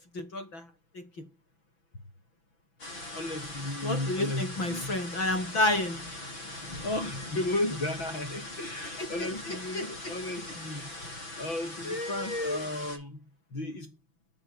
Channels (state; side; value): late; right; 6.0 ms